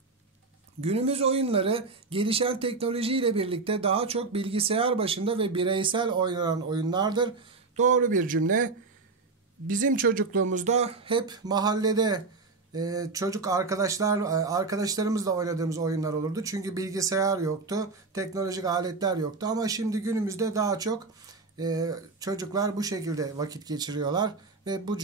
Günümüz oyunları gelişen teknolojiyle birlikte daha çok bilgisayar başında ve bireysel oynanan oyunlardır. Doğru bir cümle. Bizim çocukluğumuzda hep mahallede çocuk arkadaşlarımızla oynadığımız oyunlar olurdu. Çünkü bilgisayar yoktu, teknolojik aletler yoktu. Ama şimdi günümüzde daha çok çocuklar bu şekilde vakit geçiriyorlar ve bu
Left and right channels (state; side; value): quieter; left; 4.0 dB